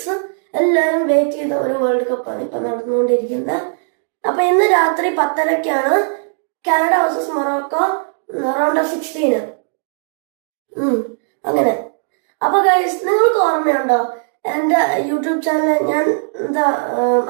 എല്ലാവരും വെയിറ്റ് ചെയ്ത ഒരു വേൾഡ് കപ്പാണ് ഇപ്പൊ നടന്നുകൊണ്ടിരിക്കുന്നത്. അപ്പൊ ഇന്ന് രാത്രി 10:30 Canada versus Morocco round of 16. അങ്ങനെ. അപ്പൊ ഗൈസ്, നിങ്ങൾക്ക് ഓർമ്മയുണ്ടോ എന്റെ യൂട്യൂബ് ചാനൽ ഞാൻ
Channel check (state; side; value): silent; left; digital silence